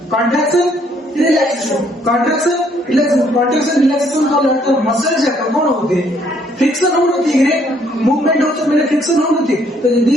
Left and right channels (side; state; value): both; normal; correlation 0.66